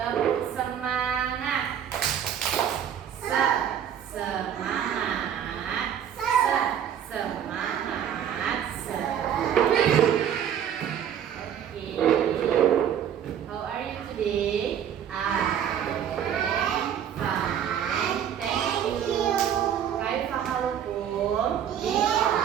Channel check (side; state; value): left; quieter; 9.2 dB